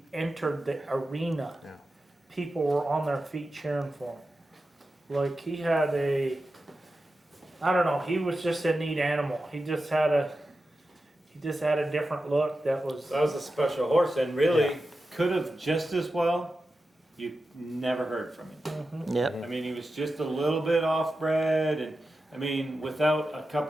entered the arena. Yeah. People were on their feet cheering for him. Like he had I don't know, he was just a neat animal. He just had a different look that was. That was a special horse, and really Yeah. could have just as well. You never heard from him. Yep. I mean, he was just a little bit off-bred, and I mean, without a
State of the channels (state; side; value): normal; both; correlation 0.92